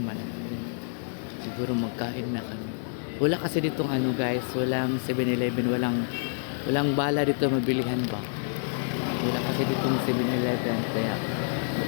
naman ako. Siguro magkain na kami. Wala kasi ditong ano guys, walang 7-Eleven, walang bala dito mabilihan ba. Wala kasi ditong 7-Eleven, kaya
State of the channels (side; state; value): right; silent; digital silence